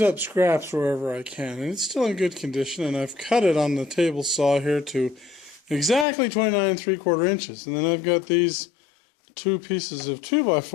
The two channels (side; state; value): right; drops out; at 6.1 s